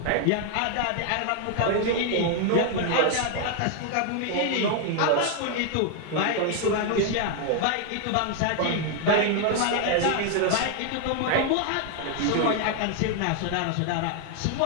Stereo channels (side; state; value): both; different; correlation 0.00